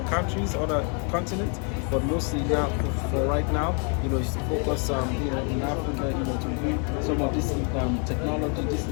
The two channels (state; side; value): quieter; right; 38.7 dB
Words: countries, other continents, but mostly now for right now, is to focus in Africa, to bring some of this technology, this